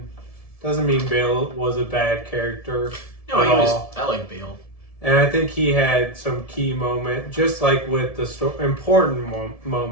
doesn't mean Bale was a bad character. No, I like Bale. And I think he had some key moment, just like with the important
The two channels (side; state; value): right; late; 1.7 ms